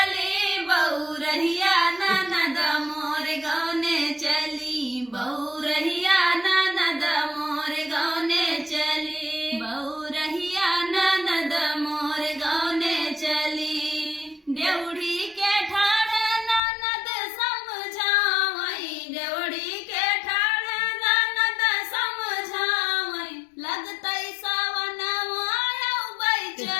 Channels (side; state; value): right; drops out; at 16.6 s